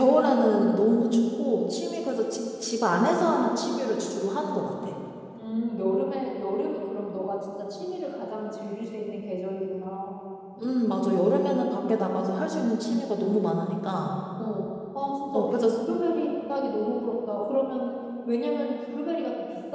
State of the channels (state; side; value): identical; both; correlation 1.00